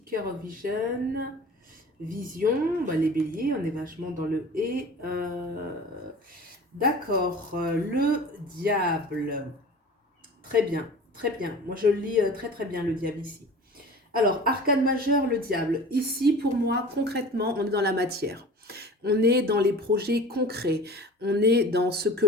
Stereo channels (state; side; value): normal; both; correlation 0.40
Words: of Vision, Vision, bah, les béliers, on est vachement dans le et. D'accord, le diable. Très bien, très bien. Moi, je lis très très bien le diable ici. Alors, arcane majeur, le diable. Ici, pour moi, concrètement, on est dans la matière. On est dans les projets concrets. On est dans ce que